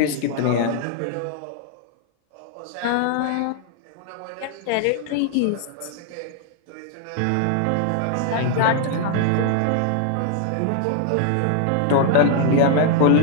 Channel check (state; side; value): different; both; correlation 0.00